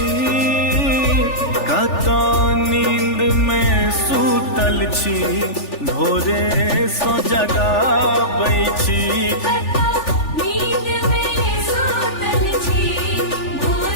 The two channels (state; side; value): late; right; 3.4 ms